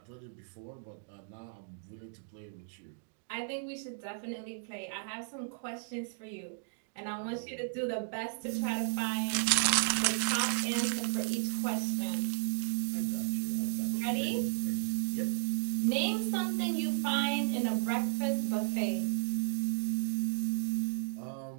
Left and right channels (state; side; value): silent; left; digital silence